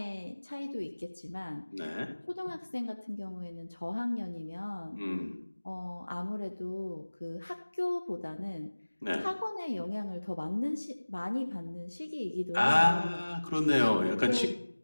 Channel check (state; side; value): inverted; both; correlation -1.00